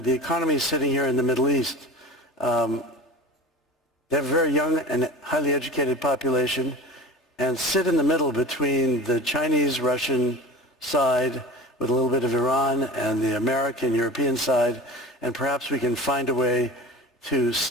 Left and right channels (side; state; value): both; normal; correlation 0.35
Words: economy is sitting here in the Middle East. They have a very young and highly educated population and sit in the middle between the Chinese-Russian side with a little bit of Iran and the American-European side, and perhaps we can find a way to